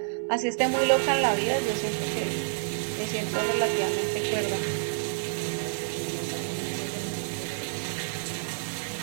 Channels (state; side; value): silent; left; 59 dB below the other